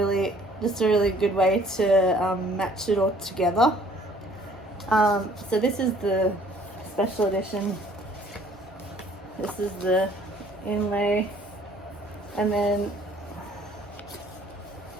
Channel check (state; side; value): normal; both; correlation 0.57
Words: just a really good way to match it all together. So this is the special edition. This is the inlay, and then